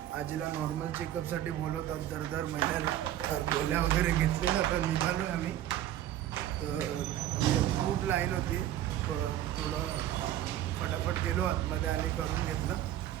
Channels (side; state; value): left; quieter; 12.4 dB